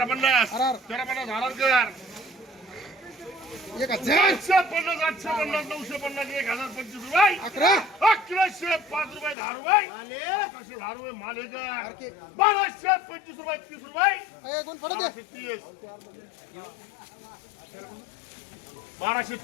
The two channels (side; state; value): right; drops out; at 9.3 s